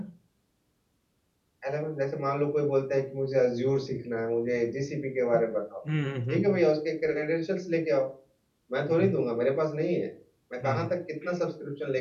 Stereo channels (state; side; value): identical; both; correlation 1.00